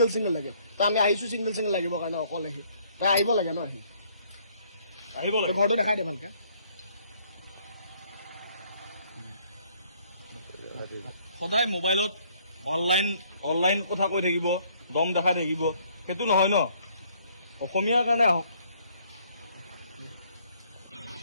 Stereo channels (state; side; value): inverted; both; correlation -0.64